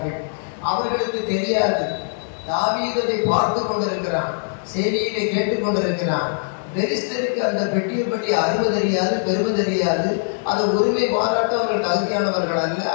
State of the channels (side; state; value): right; silent; digital silence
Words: அவர்களுக்கு தெரியாது, தாவீதை பார்த்து கொண்டிருக்கிறான், செய்தியிலே கேட்டுக் கொண்டிருக்கிறான். பெலிஸ்தருக்கு அந்த பெட்டியை பற்றி அருமை தெரியாது, பெருமை தெரியாது. அதை உரிமை பாராட்ட அவர்கள் தகுதியானவர்கள் அல்ல.